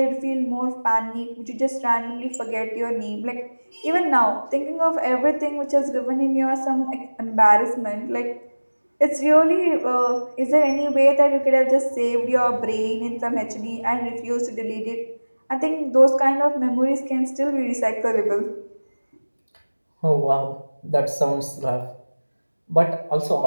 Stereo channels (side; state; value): both; inverted; correlation -1.00